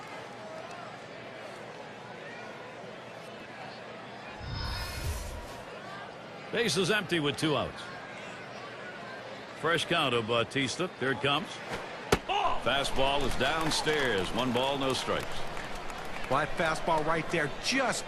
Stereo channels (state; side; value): identical; both; correlation 1.00